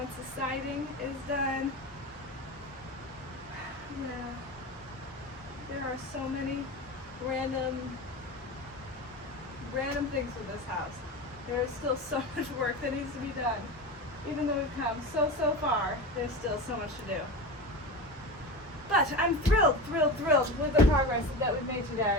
the siding is done, yeah, there are so many random things with this house. There is still so much work that needs to be done. Even though we've come so far, there's still so much to do. But I'm thrilled with the progress that we've made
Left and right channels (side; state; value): both; normal; correlation 0.26